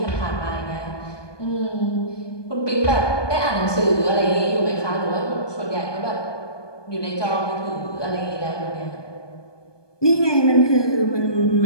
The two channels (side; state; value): right; late; 1.2 ms